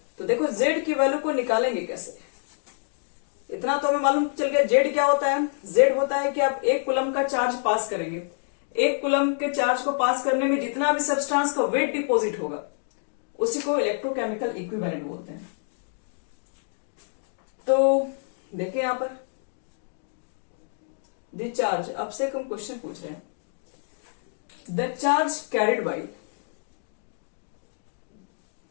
तो देखो जेड की वैल्यू को निकालेंगे कैसे, इतना तो हमें मालूम चल गया। जेड क्या होता है? जेड होता है कि आप 1 कूलम का चार्ज पास करेंगे, 1 कूलम के चार्ज को पास करने में जितना भी सब्सटेंस का वेट डिपॉजिट होगा उसी को इलेक्ट्रोकेमिकल इक्विवेलेंट बोलते हैं। तो देखिए यहां पर द चार्ज, आपसे हम क्वेश्चन पूछ रहे हैं, the charge carried by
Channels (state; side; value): silent; right; digital silence